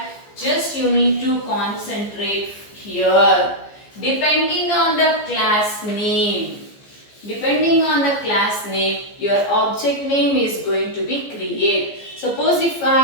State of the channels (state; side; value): late; right; 15 ms